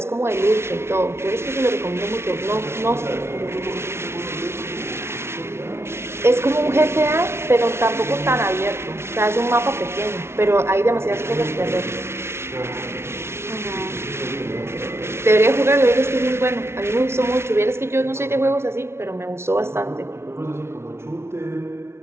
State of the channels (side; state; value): left; late; 0.12 ms